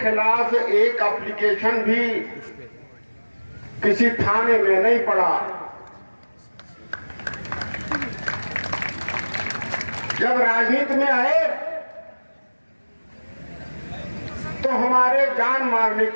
एक एप्लीकेशन भी किसी थाने में नहीं पड़ा। जब राजनीति में आए तो हमारे जान मारने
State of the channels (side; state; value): both; inverted; correlation -1.00